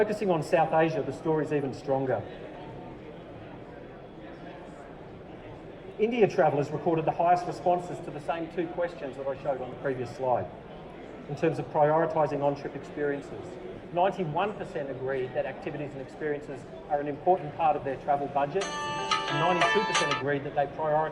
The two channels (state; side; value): identical; both; correlation 1.00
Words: on South Asia, the story is even stronger. India travellers recorded the highest responses to the same two questions that I showed on the previous slide in terms of prioritising on-trip experiences. 91% agreed that activities and experiences are an important part of their travel budget, and 92% agreed that they